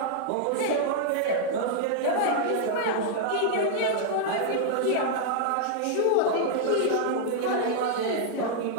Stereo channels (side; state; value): both; different; correlation -0.01